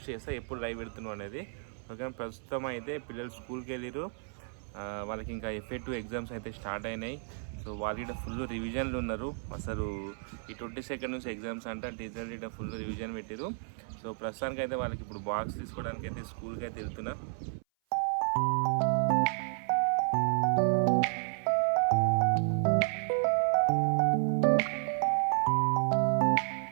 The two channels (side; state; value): left; silent; 56 dB below the other